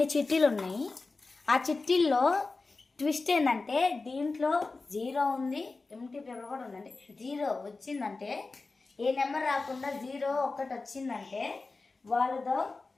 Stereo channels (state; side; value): quieter; right; 3.7 dB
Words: చిట్టీలు ఉన్నాయి. ఆ చిట్టీల్లో ట్విస్ట్ ఏంటంటే దీంట్లో 0 ఉంది, ఎంటీ పేపర్ కూడా ఉందండి. 0 వచ్చిందంటే ఏ నెంబర్ రాకుండా 0 ఒక్కటి వచ్చిందంటే వాళ్ళతో